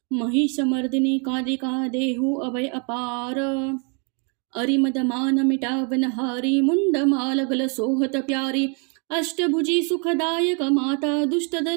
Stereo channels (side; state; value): left; quieter; 36.8 dB